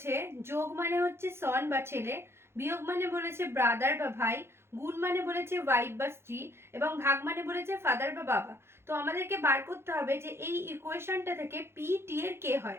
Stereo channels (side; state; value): left; late; 0.12 ms